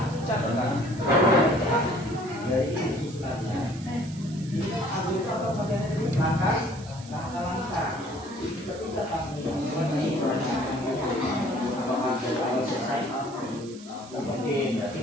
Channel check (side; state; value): right; noise; hiss, 19 dB below the sound